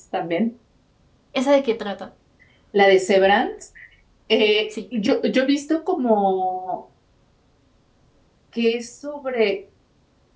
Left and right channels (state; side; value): identical; both; correlation 1.00